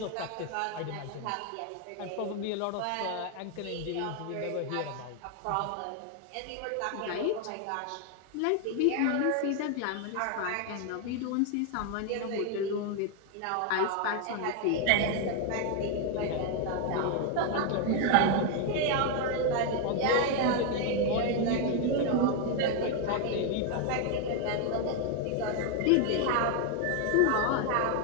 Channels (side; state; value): both; different; correlation 0.01